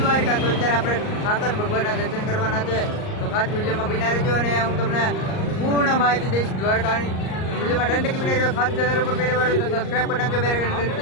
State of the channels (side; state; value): right; late; 38 ms